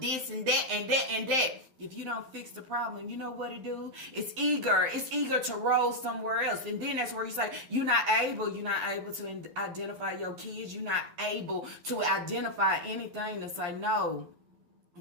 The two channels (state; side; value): late; left; 11 ms